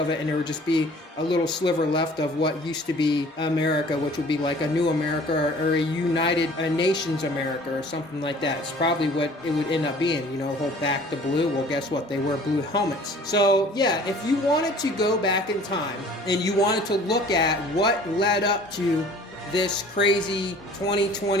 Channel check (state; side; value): normal; both; correlation 0.50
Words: it, and there would just be a little sliver left of what used to be America, which would be like a new America, or a United Nations America, or something like that. It's probably what it would end up being, whole back to blue. Well, guess what? They wear blue helmets. So yeah, if you wanted to go back in time and you wanted to look at what led up to this crazy